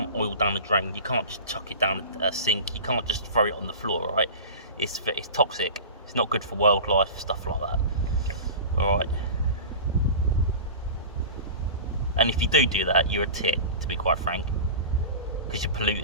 oil down the drain, you can't just chuck it down a sink, you can't just throw it on the floor, right? It's toxic, it's not good for wildlife, stuff like that. Alright. And if you do that, you're a tit, to be quite frank, because you're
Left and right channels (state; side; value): inverted; both; correlation -0.33